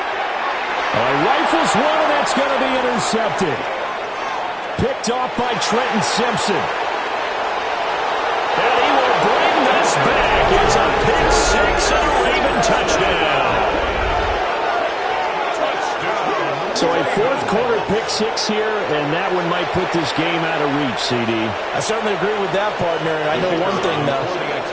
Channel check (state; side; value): identical; both; correlation 1.00